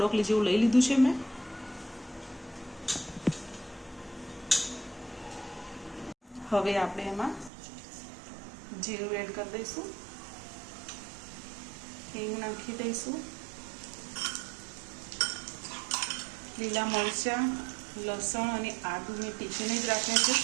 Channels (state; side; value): drops out; left; at 7.5 s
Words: જેવું લઈ લીધું છે મેં। હવે આપણે એમાં જીરું એડ કરી દઈશું, હિંગ નાખી દઈશું, લીલા મરચાં, લસણ અને આદુ મેં ટીચીને જ રાખ્યા છે।